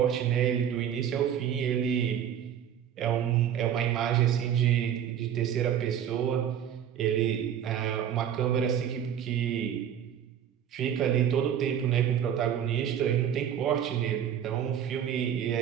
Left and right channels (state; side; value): quieter; left; 9.4 dB